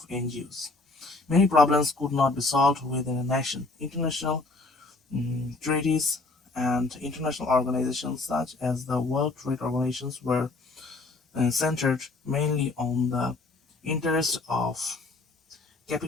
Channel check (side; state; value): right; quieter; 3.4 dB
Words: NGOs. Many problems could not be solved within a nation. International treaties and international organizations such as the World Trade Organizations were centered mainly on the interests of